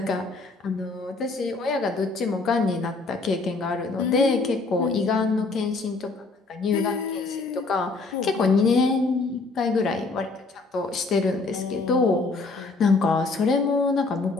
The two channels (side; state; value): right; quieter; 3.7 dB